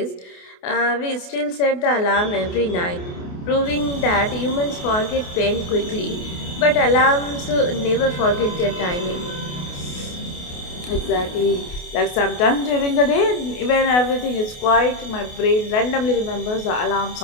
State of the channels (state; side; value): late; right; 28 ms